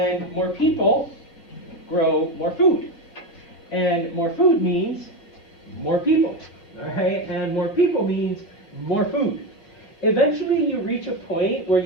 more people grow more food. And more food means more people, right? And more people means more food. Eventually you reach a point where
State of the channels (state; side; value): late; right; 5.9 ms